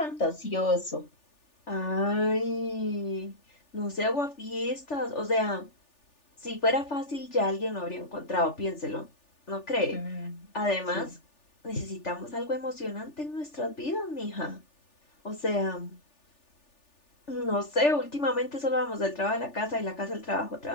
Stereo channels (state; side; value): late; right; 3.4 ms